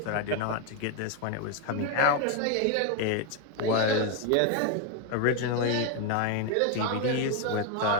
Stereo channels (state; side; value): different; both; correlation 0.01